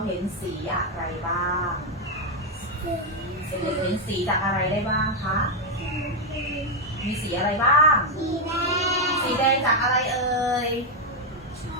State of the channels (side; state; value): both; normal; correlation 0.02